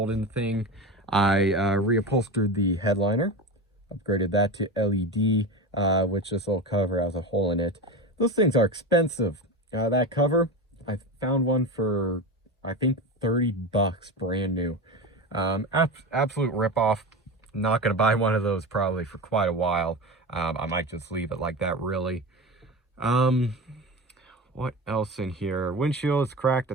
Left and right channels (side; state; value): both; normal; correlation 0.24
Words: in the thing. I reupholstered the headliner, upgraded that to LED, which this little cover has a hole in it. Those things are expensive. That cover, I found one for, I think, 30 bucks, brand new. Absolute ripoff. Not going to buy one of those probably for quite a while. I might just leave it like that, really. What else in here? Windshield is cracked. I